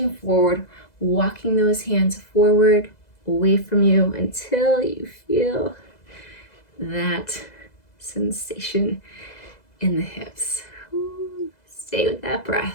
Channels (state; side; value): late; right; 2.0 ms